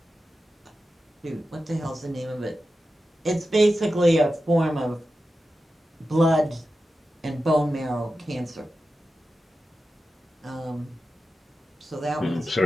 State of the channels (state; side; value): normal; both; correlation 0.92